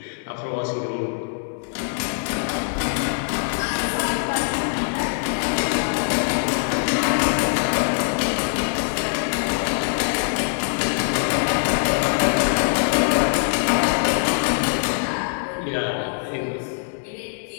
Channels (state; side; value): silent; right; digital silence